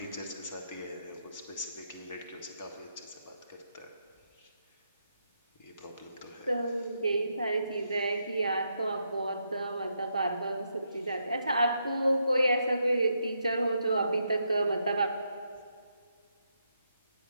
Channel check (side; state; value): both; inverted; correlation -0.80